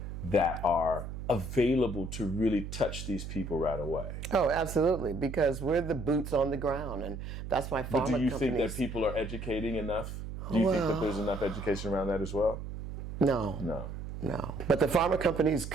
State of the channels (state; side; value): noise; right; hum, 8 dB below the sound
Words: that are available to really touch these people right away? Oh, absolutely, because we're the boots on the ground, and that's why pharma But do you companies... think that people are educating enough? Do you think that there's enough education around that as well? No. But the pharma companies